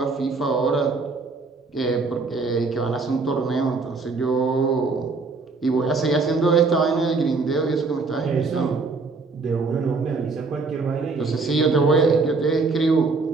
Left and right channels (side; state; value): left; quieter; 4.1 dB